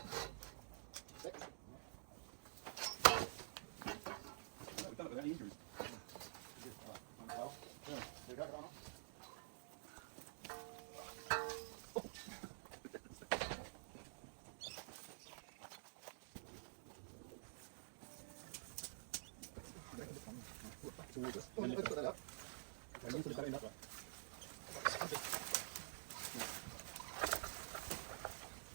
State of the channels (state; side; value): silent; left; digital silence